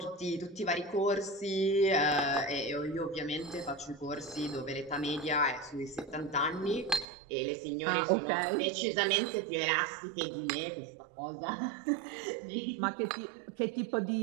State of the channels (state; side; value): drops out; left; at 7.1 s